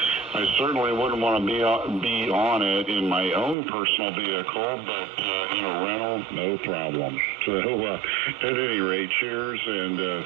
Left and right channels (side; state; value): left; drops out; at 3.6 s